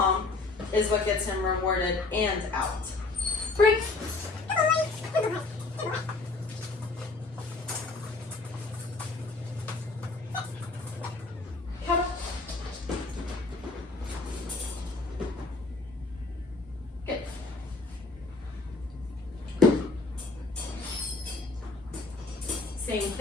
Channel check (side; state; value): right; quieter; 3.6 dB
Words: is what gets him rewarded and out. Break. Come on. Good. Same